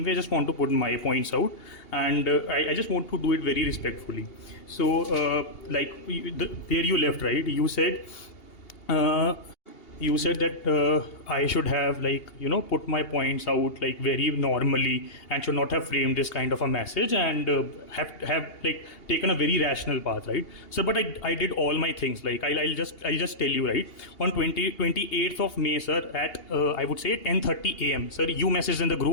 way, I just want to put my points out, and I just want to do it very respectfully. So like where you left, right? You said that I should have like put my points out like very normally and should not have framed this kind of a message and have like taken a very rational path, right? So but I did all my things. Like I'll just tell you, right, on 28th of May, sir, at I would say 10:30 AM, sir, you messaged in the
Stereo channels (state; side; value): late; right; 2.8 ms